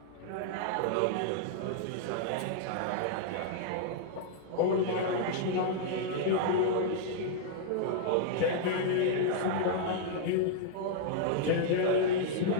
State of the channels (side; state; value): both; different; correlation -0.01